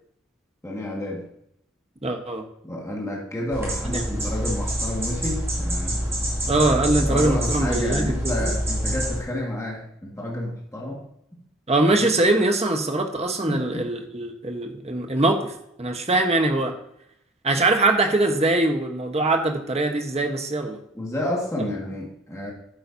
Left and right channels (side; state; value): both; normal; correlation 0.54